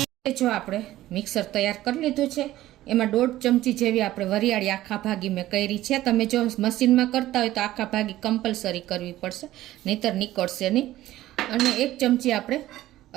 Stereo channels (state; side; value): quieter; left; 15.0 dB